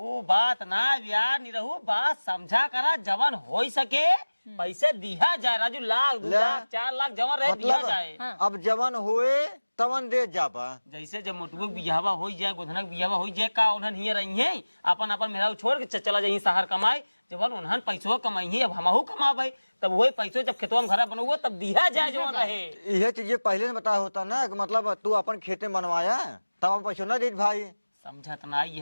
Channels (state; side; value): inverted; both; correlation -1.00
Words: बात ना यार नहीं रहू बात समझा करा जवान हो सके पैसे दिया जाए राजू, लाख 2 लाख 4 लाख जवान रहे दिया जाए। मतलब अब जवान हुए तवन दे जाबा। जैसे जब मोटू बियाहवा हो जाए गोधना बियाहवा हो जाए का उन्हन हिये रही है अपन अपन मेरा छोड़ के चला जाए शहर कमाए। जब उन्हन पैसों कमाई है अब हमहू कमाबे तब वही पैसों जब खेतवा में घर बनवा तब दिया जाए जवान रहे। यह चीजें पहले बता होता ना कि मतलब तू अपन खेते में बनवाया तब हम पैसों ना दे भाई। समझत ना